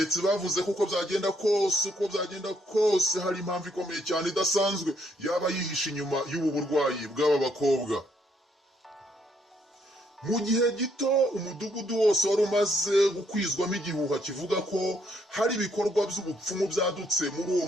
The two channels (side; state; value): both; normal; correlation 0.71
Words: bavuze ko uko byagenda kose hari impamvu ikomeye cyane idasanzwe yaba yihishe inyuma y'ubu burwayi bw'aba bakobwa. Mu gihe gito umudugudu wose wari umaze gukwizwamo igihuha kivuga ko hari ibikorwa by'ubupfumu byadutse muri uwo